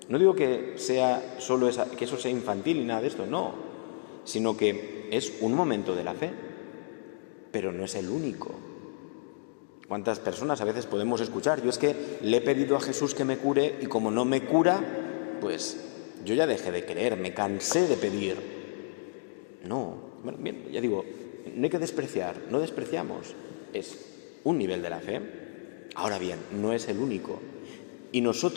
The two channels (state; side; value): silent; right; digital silence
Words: No digo que sea solo que eso sea infantil y nada de esto, no, sino que es un momento de la fe, pero no es el único. ¿Cuántas personas a veces podemos escuchar? Yo es que le he pedido a Jesús que me cure y como no me cura, pues yo ya dejé de creer, me cansé de pedir. No, bueno, bien, ya digo, no hay que despreciar, no despreciamos, es un nivel de la fe. Ahora bien, no es el único. Y